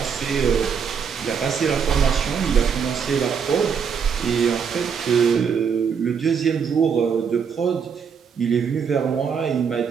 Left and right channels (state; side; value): quieter; left; 6.7 dB